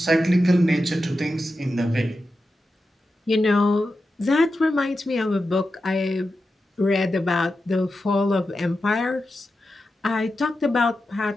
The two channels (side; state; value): both; normal; correlation 0.90